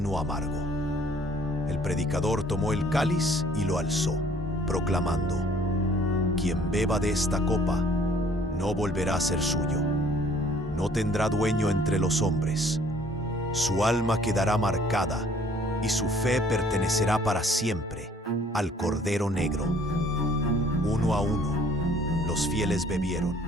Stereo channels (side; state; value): both; normal; correlation 0.58